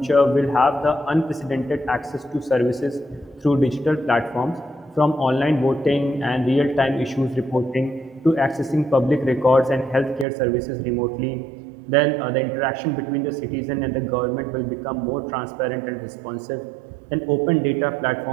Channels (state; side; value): drops out; left; at 10.2 s